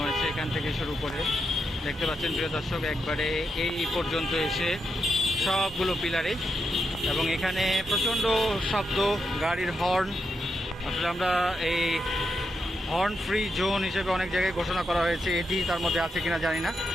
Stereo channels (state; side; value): normal; both; correlation 0.84